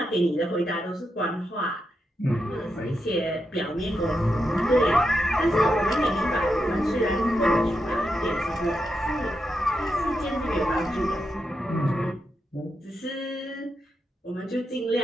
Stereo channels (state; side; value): normal; both; correlation 0.85